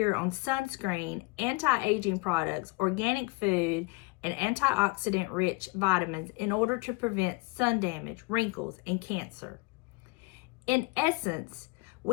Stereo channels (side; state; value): right; quieter; 27.1 dB